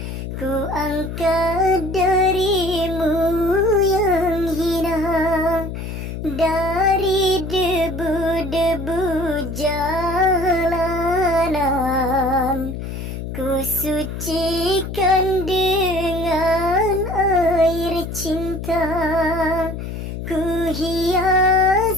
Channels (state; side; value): noise; left; hum, 7 dB below the sound